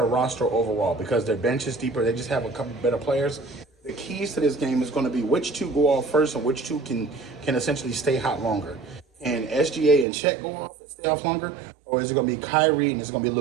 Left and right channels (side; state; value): left; drops out; at 10.1 s